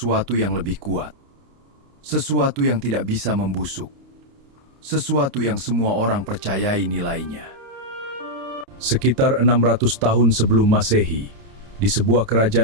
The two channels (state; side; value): late; left; 29 ms